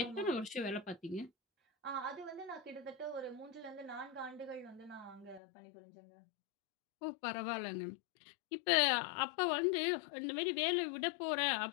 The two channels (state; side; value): drops out; right; at 5.4 s